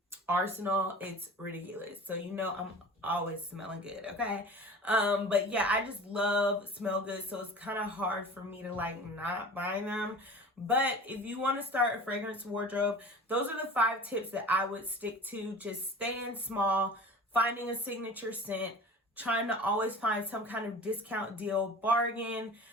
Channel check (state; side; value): normal; both; correlation 0.39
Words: arsenal, it's ridiculous. So you know I'm always smelling good, okay? But yeah, I just love smell good, so it's kind of hard for me to like not buy them. But if you want to start a fragrance wardrobe, those are the 5 tips that I would stick to. Just staying small, finding a signature scent, trying to always find some kind of discount deal, bargain,